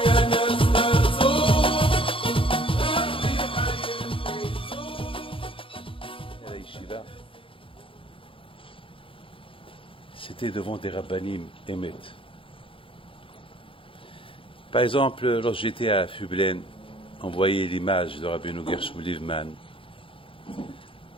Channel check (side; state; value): right; late; 0.26 ms